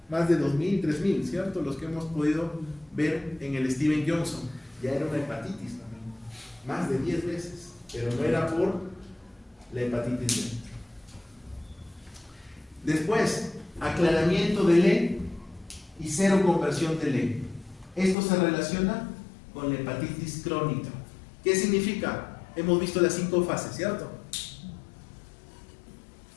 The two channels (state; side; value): drops out; right; at 18.2 s